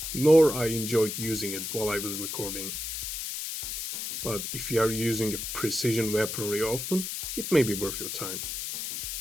nor I enjoyed using it while I was recording. But if you are using a precision weaponry often, it may be worth your time.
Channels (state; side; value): noise; left; hiss, 4 dB below the sound